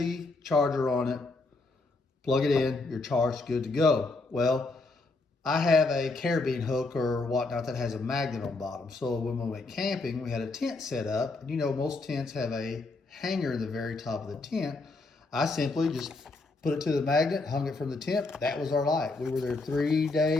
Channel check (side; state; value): right; quieter; 3.4 dB